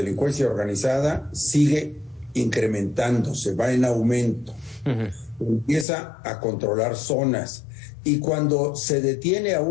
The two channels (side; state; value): right; drops out; at 5.9 s